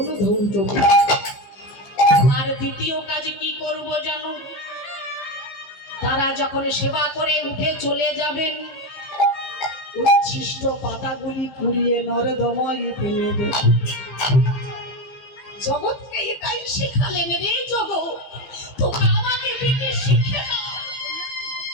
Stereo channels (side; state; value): right; late; 15 ms